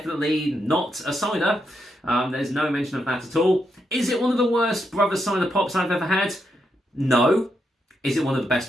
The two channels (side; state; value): both; normal; correlation 0.81